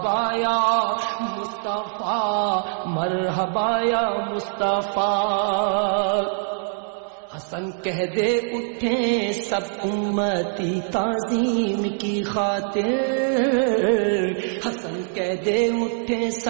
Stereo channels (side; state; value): left; silent; digital silence